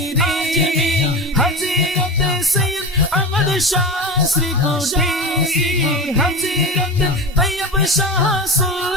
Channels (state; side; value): normal; both; correlation 0.25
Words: হযরত সৈয়দ আহমদ শাহ শ্রীকুটি হযরত তৈয়ব শাহ